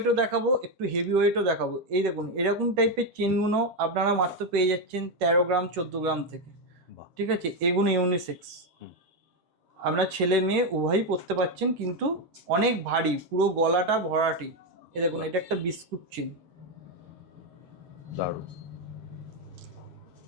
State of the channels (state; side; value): late; left; 13 ms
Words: দেখাবো, একটু হেভি ওয়েটও দেখাবো। এই দেখুন, এরকম টাইপের চেনগুলো আপনারা মাত্র পেয়ে যাচ্ছেন 13 গ্রাম 14 গ্রাম থেকে। ঠিক আছে, এগুলো ইউনিসেক্স, আপনার ছেলে মেয়ে উভয়ই পরতে পারছেন, কিন্তু অনেক ভারী, পুরো গলাটা ভরাটি। এ দেখুন, এটা একটা বিস্কুট চেন, দারুণ।